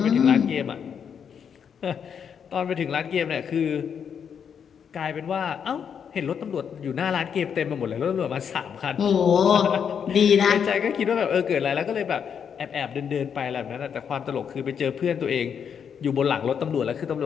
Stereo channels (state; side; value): quieter; right; 7.5 dB